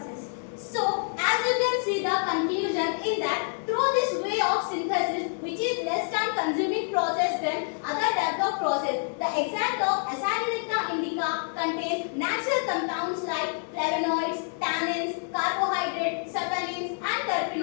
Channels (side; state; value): right; silent; 60 dB below the other